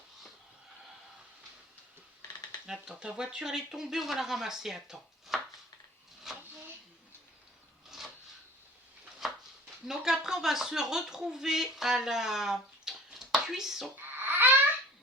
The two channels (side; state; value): both; normal; correlation 0.45